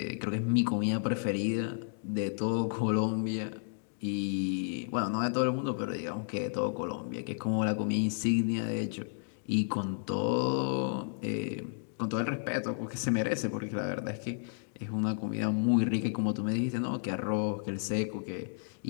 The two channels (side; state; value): right; silent; digital silence